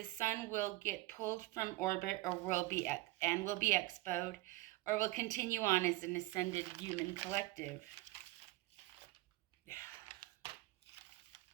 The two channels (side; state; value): left; quieter; 19.6 dB